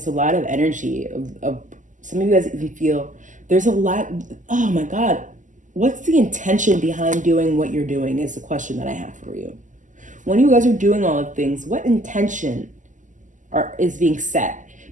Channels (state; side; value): late; left; 0.37 ms